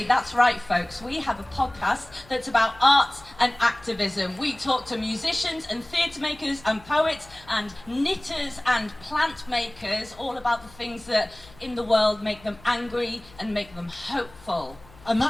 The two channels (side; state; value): left; noise; hum, 23 dB below the sound